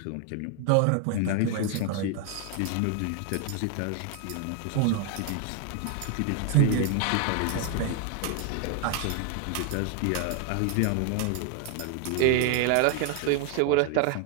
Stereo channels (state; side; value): different; both; correlation 0.00